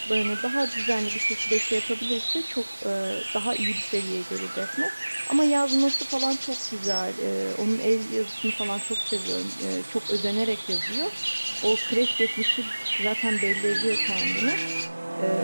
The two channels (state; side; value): inverted; both; correlation -1.00